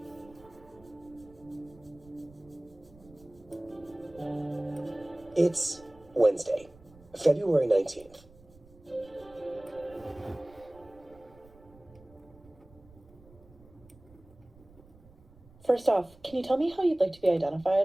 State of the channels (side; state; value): right; noise; rumble, 25 dB below the sound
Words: It's Wednesday, February 19th. First off, can you tell me how you'd like to be